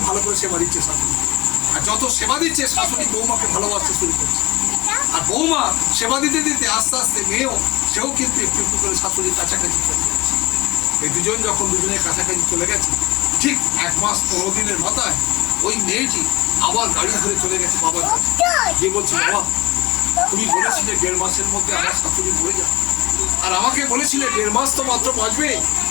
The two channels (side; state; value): right; quieter; 20.1 dB